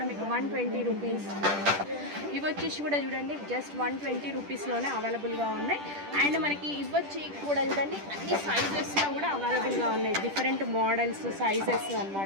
మీకు 120 రూపీస్. ఇవి వచ్చేసి కూడా చూడండి జస్ట్ 120 రూపీస్లోనే అవైలబుల్గా ఉన్నాయి. అండ్ మనకి ఇవ్వచ్చి కూడా చూడండి అన్ని సైజెస్లో కూడా అవైలబుల్గా ఉన్నాయి, డిఫరెంట్ మోడల్స్ సైజెస్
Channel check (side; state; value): left; late; 10 ms